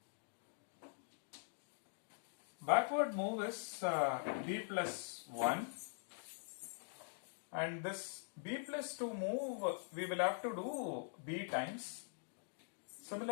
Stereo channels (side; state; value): right; silent; digital silence